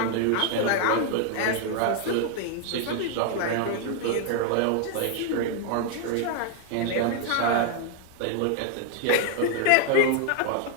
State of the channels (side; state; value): both; different; correlation 0.00